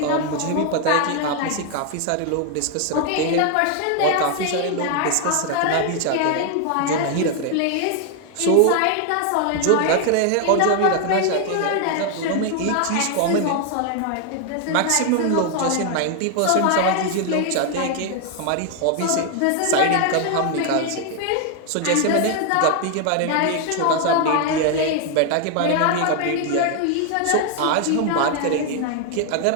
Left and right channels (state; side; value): different; both; correlation 0.00